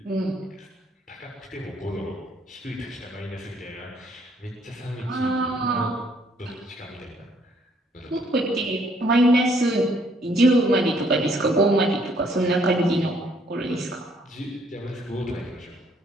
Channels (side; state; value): both; normal; correlation 0.66